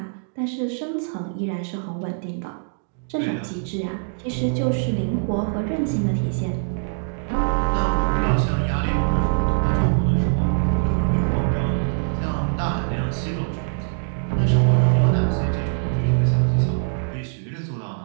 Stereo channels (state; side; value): silent; left; digital silence